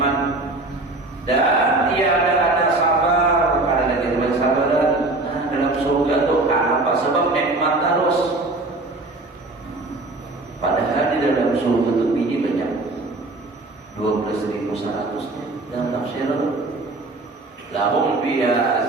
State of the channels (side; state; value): left; quieter; 3.0 dB